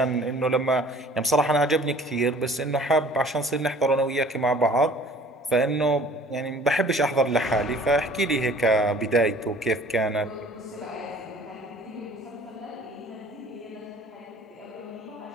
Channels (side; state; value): both; normal; correlation 0.51